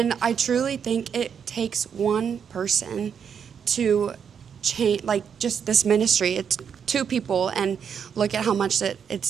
I truly think it takes one person to change, like just this ministry. It's 2 people, and look at how much that it's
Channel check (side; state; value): left; quieter; 7.4 dB